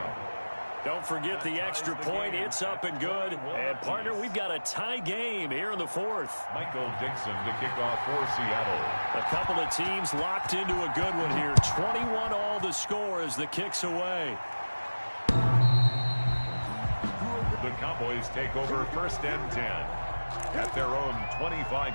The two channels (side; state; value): both; inverted; correlation -1.00